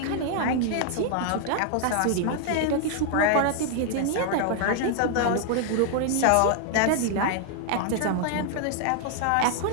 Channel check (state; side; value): different; both; correlation 0.00